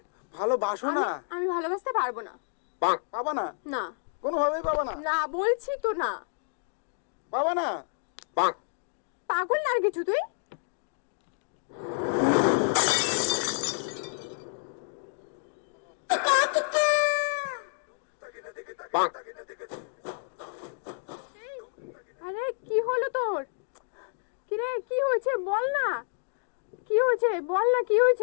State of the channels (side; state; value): right; silent; digital silence